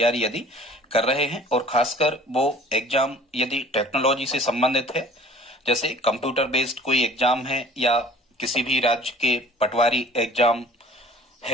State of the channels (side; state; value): both; normal; correlation 0.50